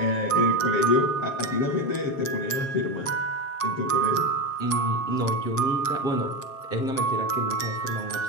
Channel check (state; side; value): late; right; 7.4 ms